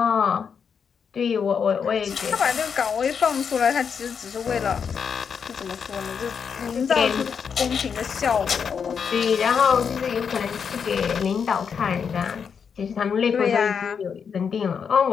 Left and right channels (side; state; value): right; quieter; 6.6 dB